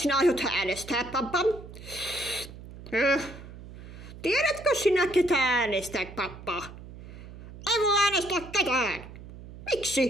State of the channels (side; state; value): right; noise; hum, 15 dB below the sound